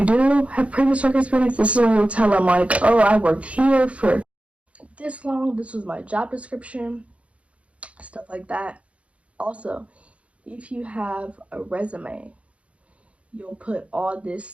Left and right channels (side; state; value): left; late; 0.063 ms